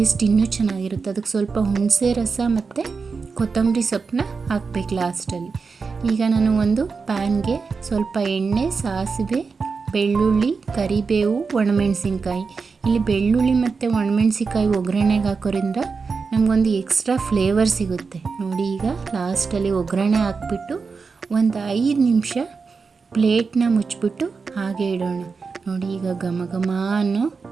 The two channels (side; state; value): left; quieter; 4.9 dB